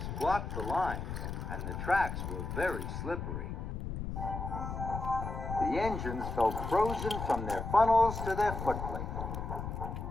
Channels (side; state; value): left; noise; rumble, 5 dB below the sound